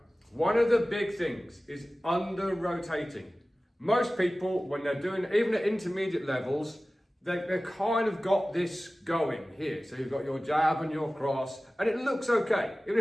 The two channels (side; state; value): both; normal; correlation 0.97